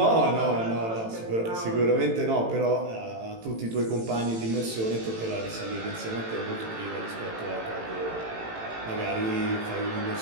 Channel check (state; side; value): late; left; 18 ms